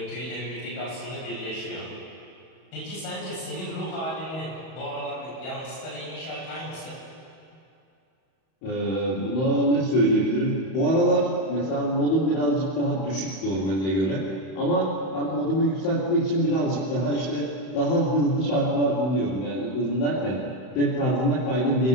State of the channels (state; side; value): late; right; 31 ms